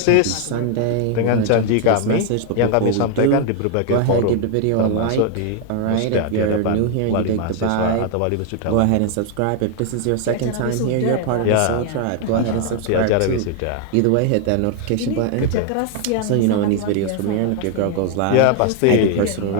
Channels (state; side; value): different; both; correlation 0.00